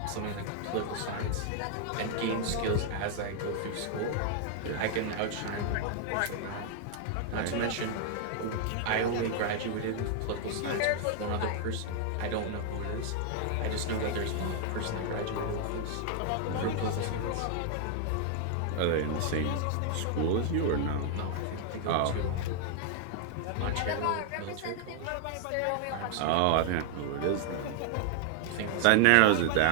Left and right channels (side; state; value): both; different; correlation 0.00